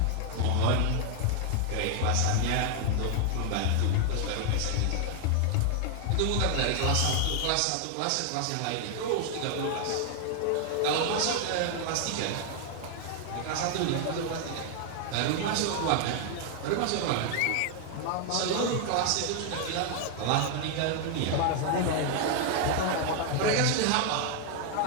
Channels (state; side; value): different; both; correlation 0.00